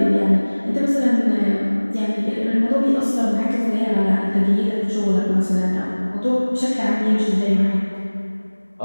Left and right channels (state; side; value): inverted; both; correlation -1.00